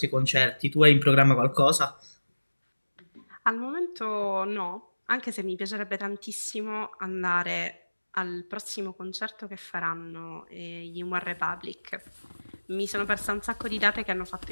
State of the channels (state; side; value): inverted; both; correlation -1.00